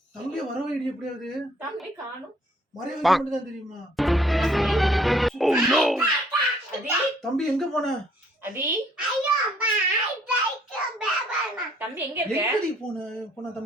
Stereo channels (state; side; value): normal; both; correlation 0.62